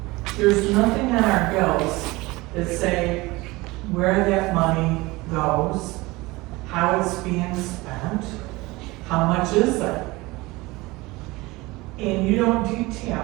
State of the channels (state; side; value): quieter; left; 21.7 dB